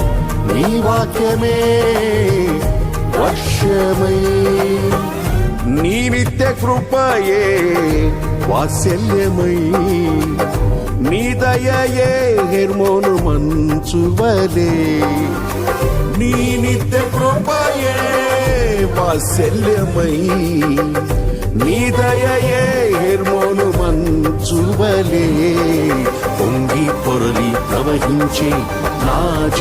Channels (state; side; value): identical; both; correlation 1.00